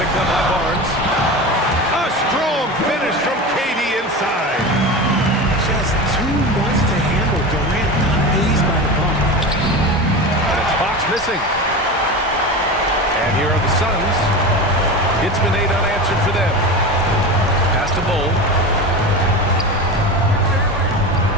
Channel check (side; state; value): both; normal; correlation 0.26